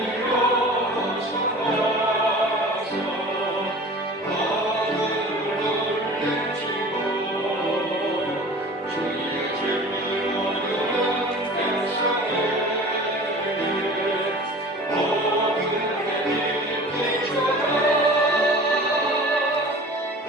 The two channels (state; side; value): normal; both; correlation 0.41